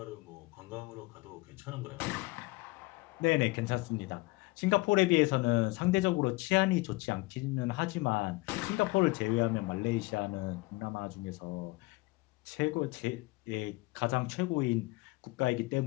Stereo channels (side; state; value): right; quieter; 22.9 dB